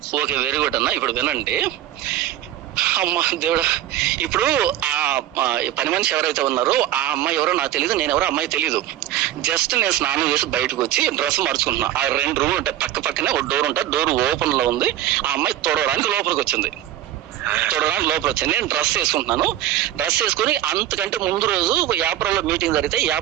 ఓకే, వెరీ గుడ్ అన్న. ఇప్పుడు వినండి. అమ్మ దేవుడా, ఇప్పుడు ఆ పని మనిషి ఎవరైతే ఉన్నారో ఆ అమ్మాయి ఎవరో నాకు తెలియదు, నేను ఎవరో అమ్మాయి తెలీదు. జస్ట్ నేను స్నానం చేసి బయటకు వచ్చి డ్రెస్ మార్చుకుంటున్నా. ఆ 2 రూమ్లు ఉంటాయి, పక్కనే ఒక డోర్ ఉంటుంది. డోర్ ఓపెన్ లో ఉంది. ఆ అమ్మాయి తొడవడానికి లోపలికి వచ్చింది. నేను డ్రెస్ వేసుకుంటున్నాను. డ్రెస్ వేసుకుని అంతకంటే ముందు రోజు యాప్రాల్లో మీటింగ్ జరిగితే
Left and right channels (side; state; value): left; quieter; 12.7 dB